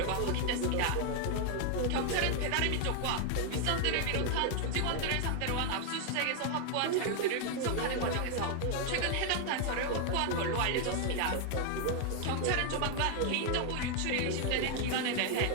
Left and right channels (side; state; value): both; different; correlation 0.00